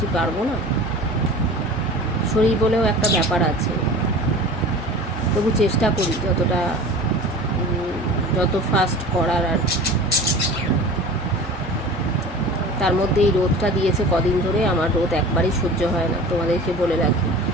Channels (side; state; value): both; normal; correlation 0.38